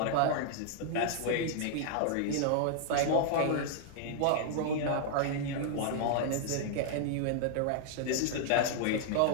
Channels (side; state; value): both; different; correlation -0.01